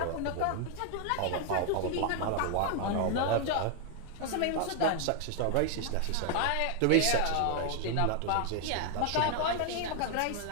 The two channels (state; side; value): different; both; correlation 0.00